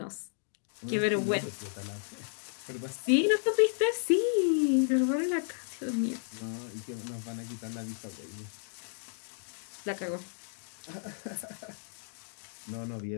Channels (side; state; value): right; silent; digital silence